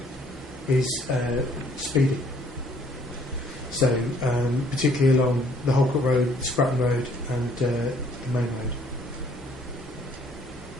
is speeding. So, particularly along the Holcourt Road, Spratton Road, and the main road.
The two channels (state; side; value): normal; both; correlation 0.61